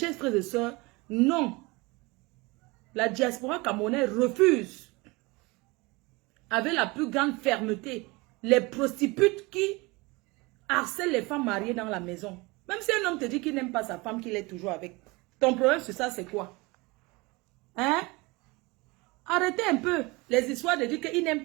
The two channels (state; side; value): quieter; left; 24.6 dB